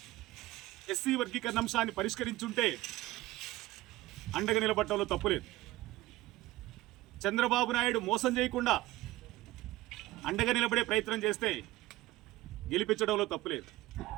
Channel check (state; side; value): quieter; left; 17.9 dB